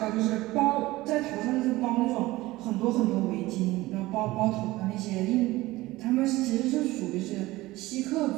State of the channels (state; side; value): quieter; left; 18.8 dB